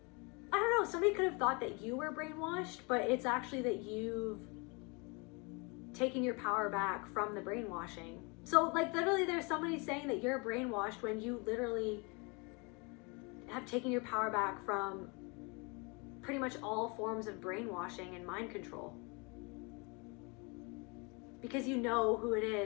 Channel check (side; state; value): right; quieter; 30.5 dB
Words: I don't know, somebody could have thought that you were brainwashed, but it's actually that you've taken your power back from the brainwashing. So like literally there's somebody saying that you're brainwashed when you literally have taken your power back from pretty much all forms of brainwashing and mind control. Because you know who it